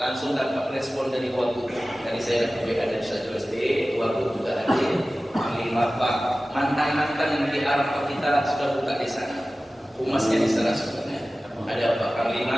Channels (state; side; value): normal; both; correlation 0.96